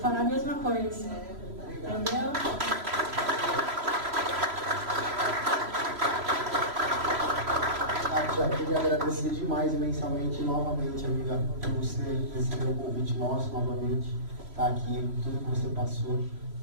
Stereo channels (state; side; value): late; left; 3.0 ms